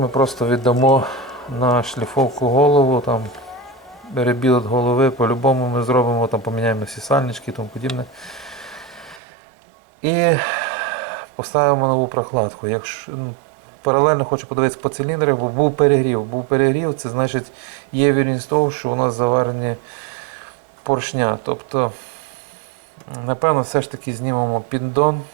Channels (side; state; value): left; drops out; at 9.2 s